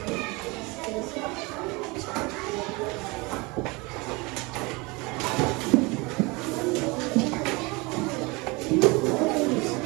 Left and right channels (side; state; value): left; quieter; 25.9 dB